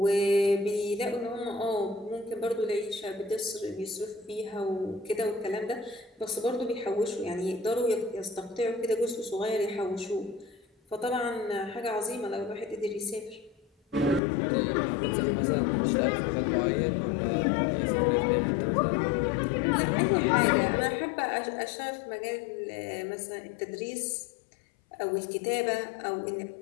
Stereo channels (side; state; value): right; drops out; at 14.2 s